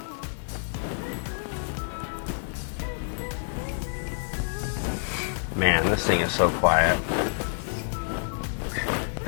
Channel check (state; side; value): silent; right; digital silence